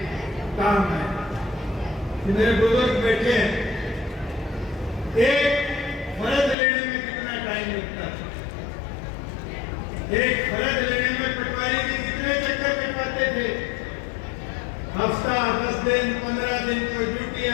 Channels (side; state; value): right; drops out; at 6.6 s